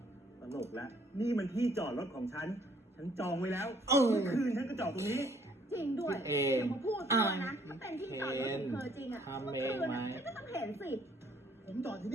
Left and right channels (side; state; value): both; normal; correlation 0.63